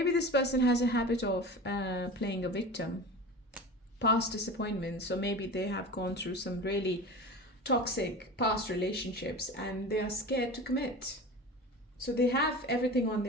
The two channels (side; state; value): both; normal; correlation 0.32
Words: this person has a habit of playing a victim. Past disappointments. So maybe they have gone through some really toxic past relationships and they are scared to commit. So they have everything on